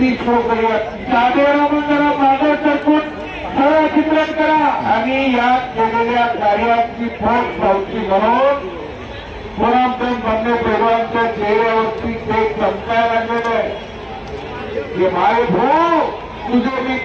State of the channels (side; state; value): both; identical; correlation 1.00